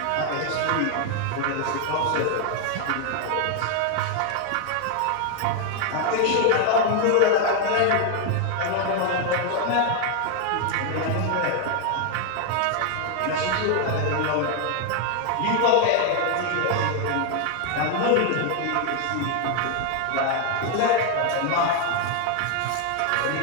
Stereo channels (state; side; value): different; both; correlation 0.00